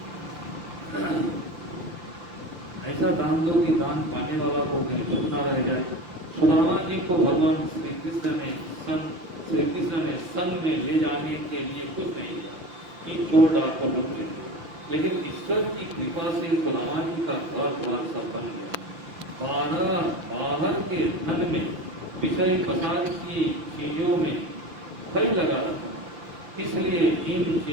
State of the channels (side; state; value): left; late; 6.2 ms